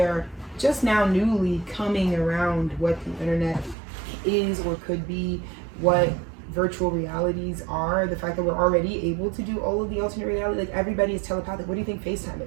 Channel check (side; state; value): left; drops out; at 3.8 s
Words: just now newly coming around what the internet is or could be, what virtual realities are, the fact that we're already able to do all of the alternate reality, like everybody is telepathic. What do you think FaceTime